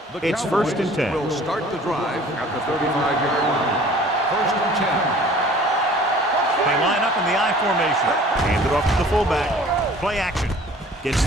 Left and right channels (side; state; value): both; normal; correlation 0.49